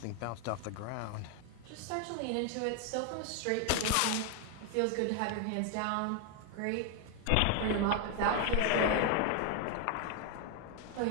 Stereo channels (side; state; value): both; different; correlation 0.00